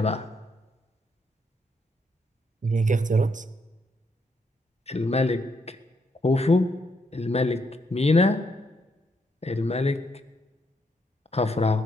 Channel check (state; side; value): normal; both; correlation 0.76